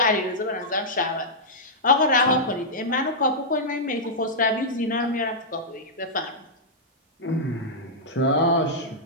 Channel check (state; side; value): normal; both; correlation -0.09